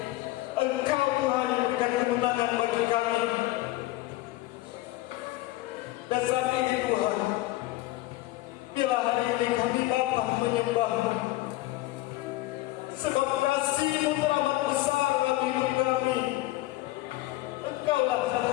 Engkau Tuhan yang memberikan kemenangan bagi kami. Dan saat ini Tuhan, bila hari ini kami datang menyembah-Mu, sebab kasih-Mu teramat besar dalam hidup kami. Engkaulah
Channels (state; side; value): quieter; right; 17.8 dB